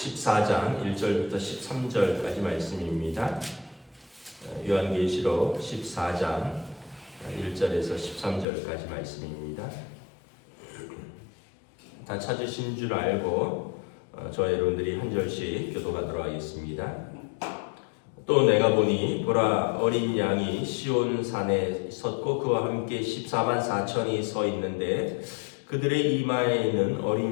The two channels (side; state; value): right; drops out; at 8.5 s